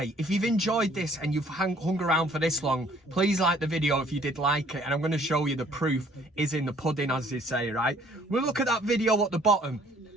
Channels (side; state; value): both; normal; correlation 0.59